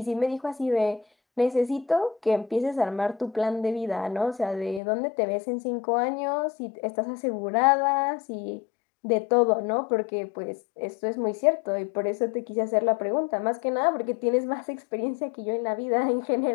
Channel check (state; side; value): drops out; right; at 4.8 s